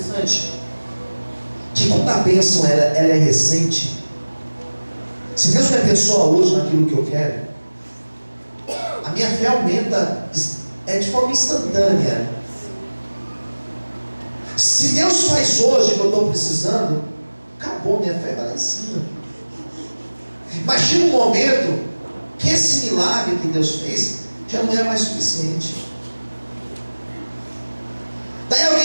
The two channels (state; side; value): inverted; both; correlation -1.00